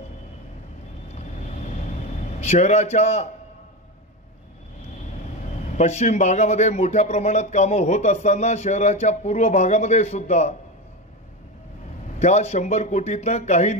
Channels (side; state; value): both; normal; correlation 0.17